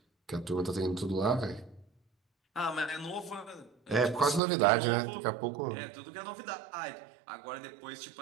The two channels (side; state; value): left; drops out; at 4.4 s